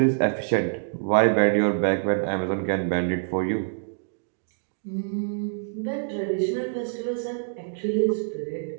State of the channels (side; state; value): left; silent; digital silence